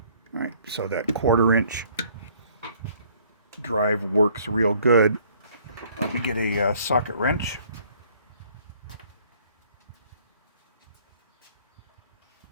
All right, so that 1/4 inch drive works real good. Let me get a socket wrench.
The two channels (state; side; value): inverted; both; correlation -0.59